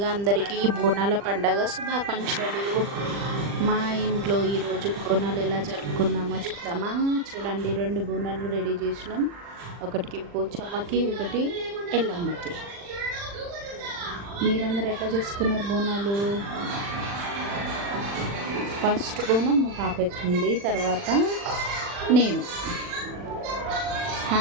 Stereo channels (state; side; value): late; left; 40 ms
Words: అందరికీ బోనాల పండగ శుభాకాంక్షలు. మా ఇంట్లో ఈరోజు బోనాలు ఎలా జరుపుకున్నామో చూద్దామా. చూడండి, 2 బోనాలు రెడీ చేసినాం. ఒకటికి పోచమ్మకి, ఒకటి ఎల్లమ్మకి. మీరందరూ ఎట్లా చేసుకున్నారు బోనాలు? ఫస్ట్ బోనం మా పాప ఎత్తుకుంది, తర్వాత నేను.